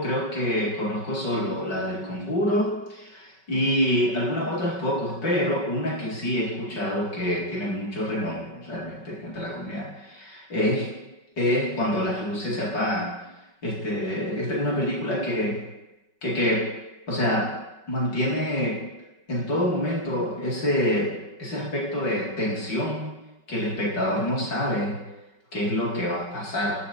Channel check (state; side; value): late; right; 5.3 ms